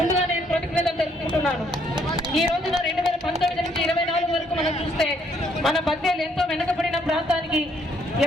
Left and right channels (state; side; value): normal; both; correlation 0.68